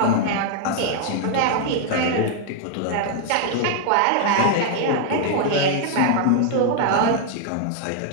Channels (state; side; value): different; both; correlation 0.00